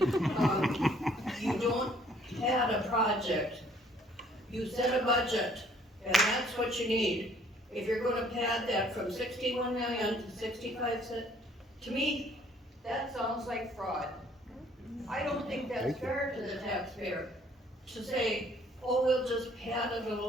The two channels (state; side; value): normal; both; correlation 0.60